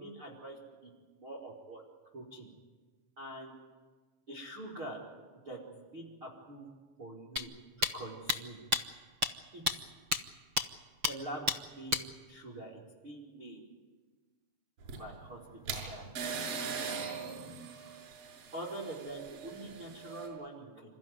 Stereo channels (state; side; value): late; left; 6.9 ms